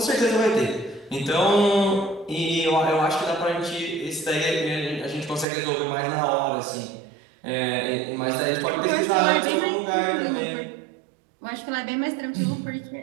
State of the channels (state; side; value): drops out; left; at 5.5 s